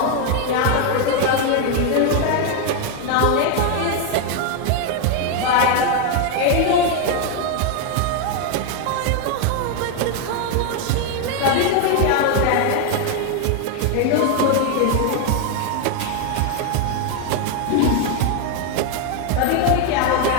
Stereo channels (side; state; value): both; different; correlation 0.01